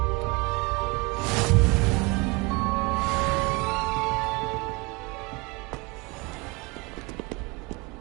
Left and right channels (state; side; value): quieter; left; 26.1 dB